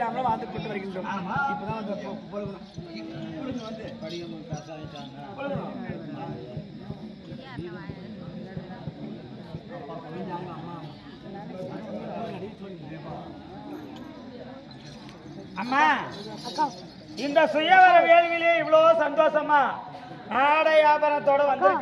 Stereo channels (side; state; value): both; identical; correlation 1.00